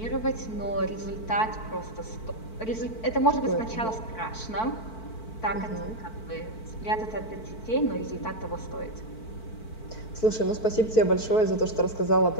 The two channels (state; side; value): late; right; 4.5 ms